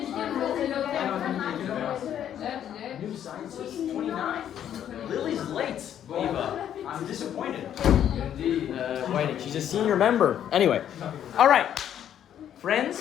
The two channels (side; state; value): right; quieter; 10.1 dB